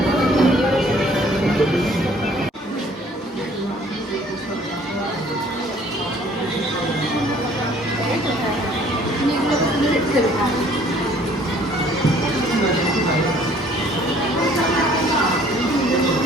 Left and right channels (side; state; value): both; normal; correlation 0.57